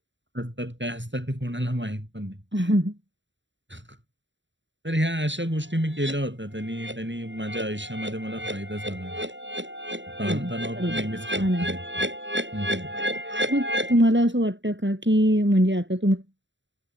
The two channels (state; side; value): late; left; 0.54 ms